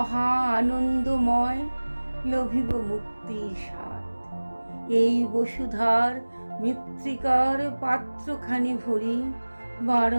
আনন্দময়, লভিব মুক্তির স্বাদ। এই বসুধার মৃত্তিকার পাত্রখানি ভরি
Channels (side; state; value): both; inverted; correlation -1.00